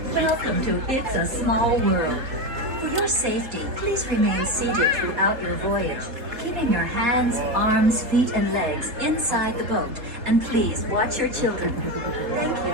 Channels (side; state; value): left; late; 3.7 ms